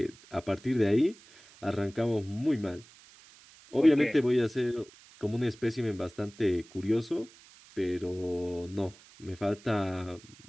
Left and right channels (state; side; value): noise; right; hiss, 24 dB below the sound